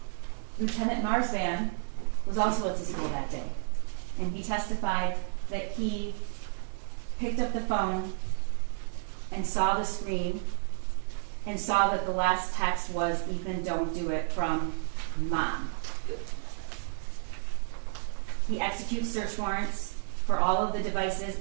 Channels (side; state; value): left; silent; digital silence